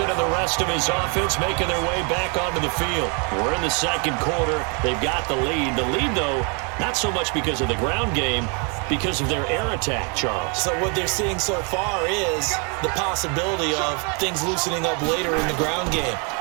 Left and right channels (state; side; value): quieter; left; 35.6 dB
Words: and the rest of his offense making their way back onto the field. We're in the 2nd quarter. They've got the lead. The lead, though, not so much because of the ground game, because of their air attack, Charles. So what they're seeing so far is the possibility of things loosening up later in the ground game.